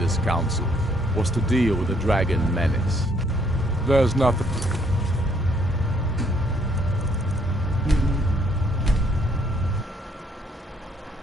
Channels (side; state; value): both; normal; correlation 0.67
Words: council was to deal with the dragon menace. There's nothing...